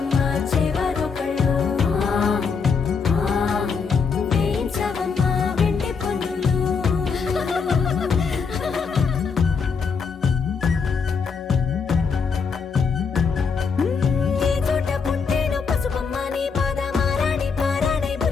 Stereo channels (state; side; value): quieter; right; 5.5 dB